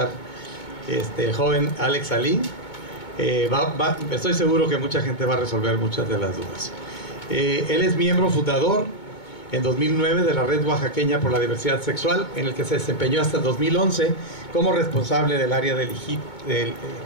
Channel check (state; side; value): late; right; 2.2 ms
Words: el joven Alex Alí, estoy seguro que mucha gente va a resolver muchas de las dudas. Él es miembro fundador en 2009 de la Red Oaxaqueña por la Diversidad Sexual, en el que se desempeñó hasta 2011 como responsable del área de